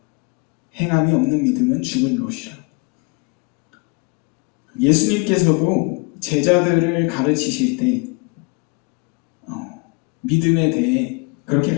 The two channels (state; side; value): quieter; right; 30.8 dB